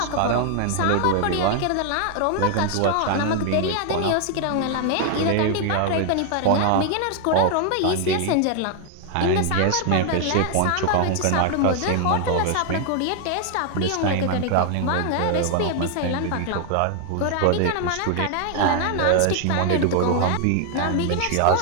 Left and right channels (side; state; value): both; different; correlation 0.00